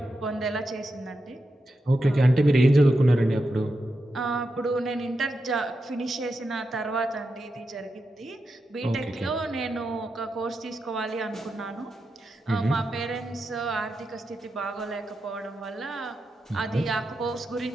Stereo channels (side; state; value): both; normal; correlation 0.88